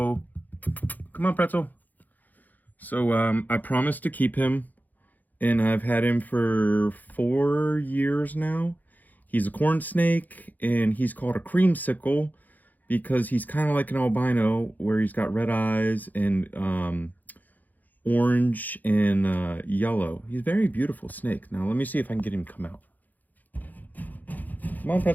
come on, Pretzel. So I promised to keep him, and I've had him for 4 years now. He's a corn snake, and he's called a creamsicle because he's kind of like an albino, where he's got red eyes and orange and yellow. He's a very beautiful snake. Now let me see if I can get him to come out. Come on,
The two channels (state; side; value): late; right; 0.083 ms